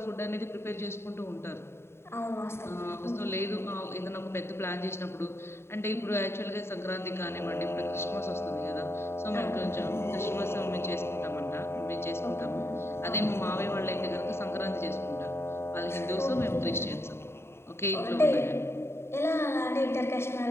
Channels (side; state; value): right; late; 0.12 ms